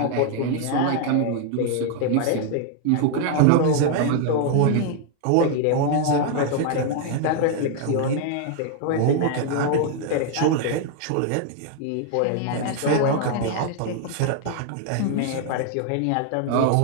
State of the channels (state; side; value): different; both; correlation 0.00